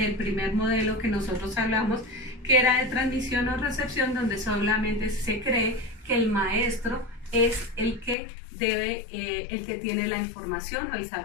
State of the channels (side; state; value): right; drops out; at 8.2 s